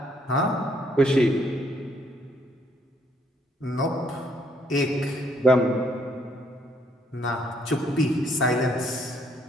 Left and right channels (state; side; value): normal; both; correlation 0.68